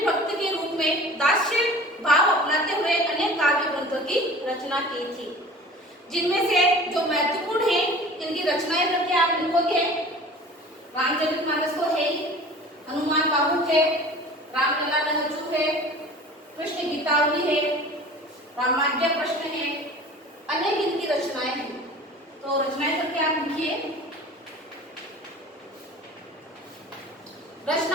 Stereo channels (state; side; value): normal; both; correlation 0.42